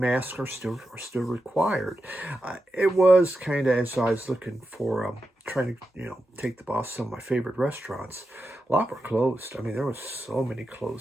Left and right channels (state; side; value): normal; both; correlation 0.89